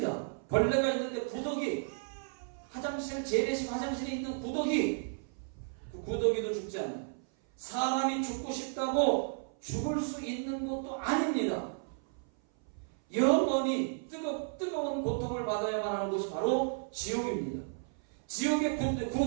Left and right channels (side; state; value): left; silent; 56 dB below the other